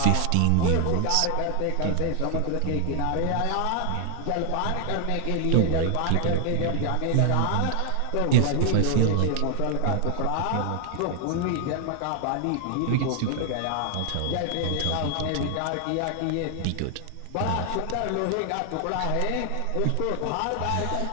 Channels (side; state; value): both; different; correlation 0.00